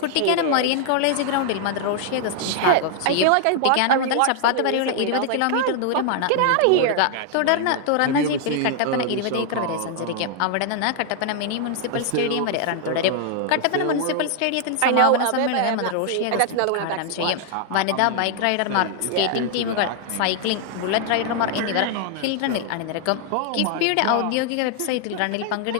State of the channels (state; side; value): different; both; correlation 0.00